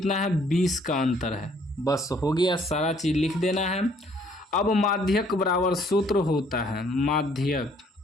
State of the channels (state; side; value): normal; both; correlation 0.63